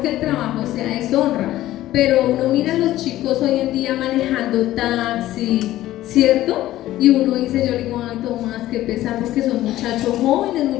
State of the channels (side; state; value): right; quieter; 14.7 dB